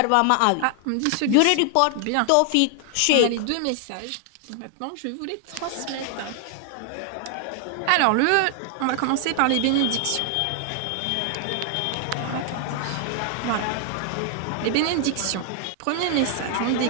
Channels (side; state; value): both; different; correlation 0.00